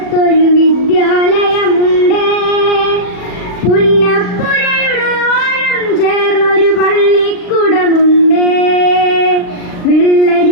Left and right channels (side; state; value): right; late; 39 ms